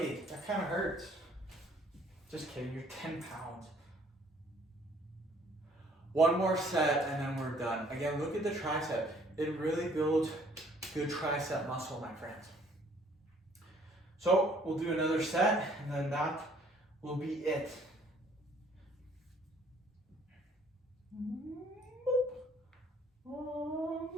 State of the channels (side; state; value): both; normal; correlation 0.60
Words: That kind of hurts. Just kidding. You're 10 pounds. 1 more set and then we're done. Again, look at the tricep. It really builds good tricep muscle, my friends. So we'll do another set and then that will be it.